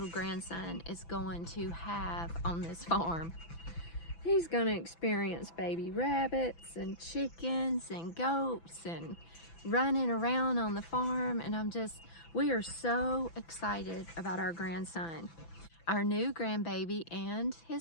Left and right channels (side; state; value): right; late; 6.0 ms